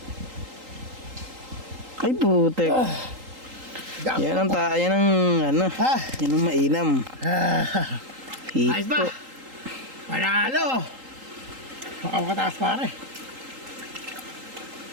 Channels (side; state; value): left; late; 3.8 ms